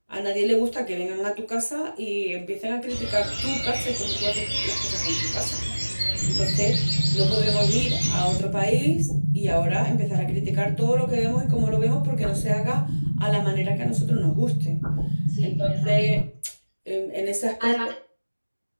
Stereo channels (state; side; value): inverted; both; correlation -1.00